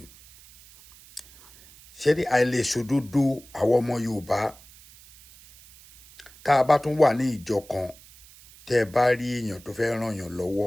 ṣé ní àìlèṣòdodo àwọn ọmọ Yorùbá tá a bá tún wà ní ìjọ kan tẹ́ ẹ bá rí èèyàn tó fẹ́ ràn yàn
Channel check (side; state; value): right; noise; hiss, 23 dB below the sound